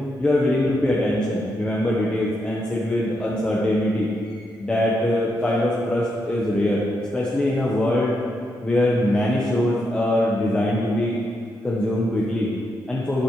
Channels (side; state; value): both; normal; correlation 0.81